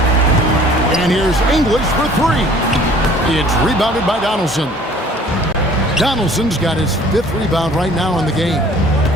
And here's English for 3. It's rebounded by Donaldson. Donaldson's got his 5th rebound right now in the game.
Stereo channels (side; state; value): both; normal; correlation 0.52